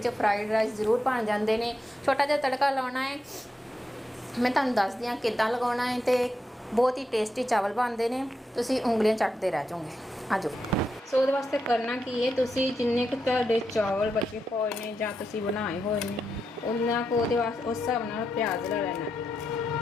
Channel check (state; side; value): normal; both; correlation 0.85